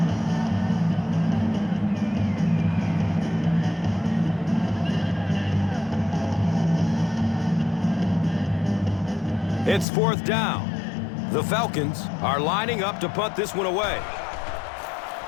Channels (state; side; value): drops out; right; at 9.9 s